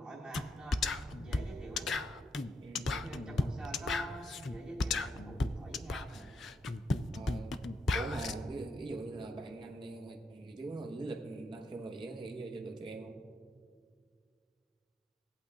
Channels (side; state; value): both; normal; correlation 0.80